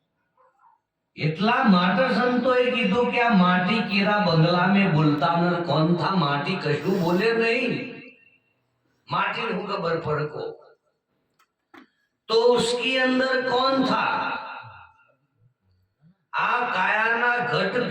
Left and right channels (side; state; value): both; identical; correlation 1.00